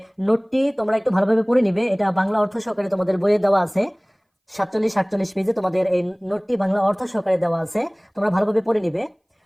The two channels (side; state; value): both; identical; correlation 1.00